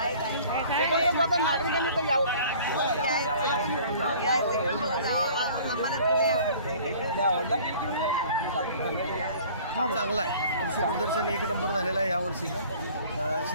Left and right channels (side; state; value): both; inverted; correlation -0.49